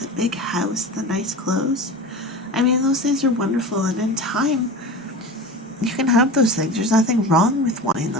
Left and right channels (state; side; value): normal; both; correlation 0.31